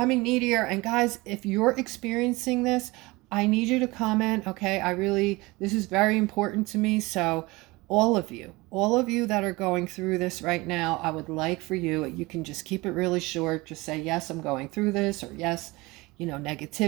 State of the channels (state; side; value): quieter; left; 22.6 dB